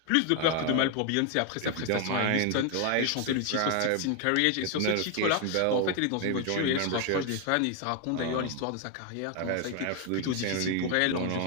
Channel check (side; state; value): both; different; correlation 0.01